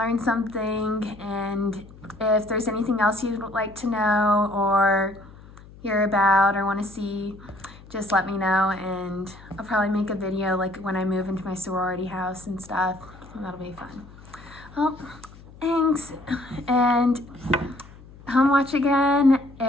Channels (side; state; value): left; noise; hum, 20 dB below the sound